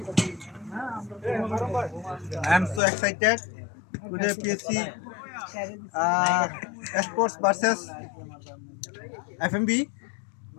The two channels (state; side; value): drops out; right; at 2.8 s